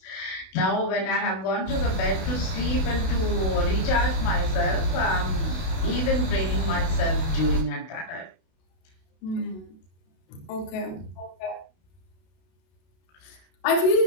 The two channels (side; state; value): right; late; 31 ms